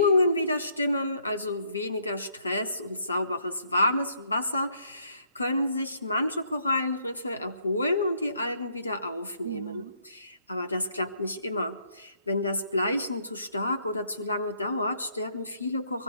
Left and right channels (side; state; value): both; inverted; correlation -0.69